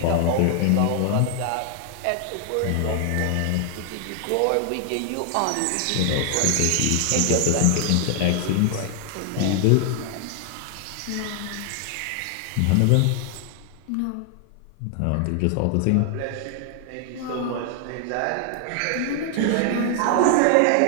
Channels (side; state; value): both; different; correlation 0.00